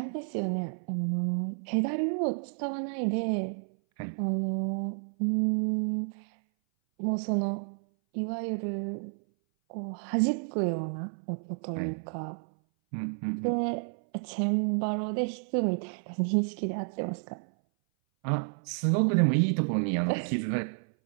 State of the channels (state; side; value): silent; left; 57 dB below the other